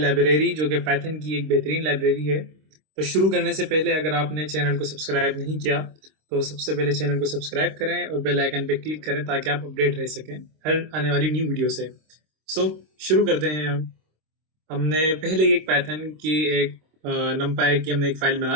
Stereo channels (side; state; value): left; late; 26 ms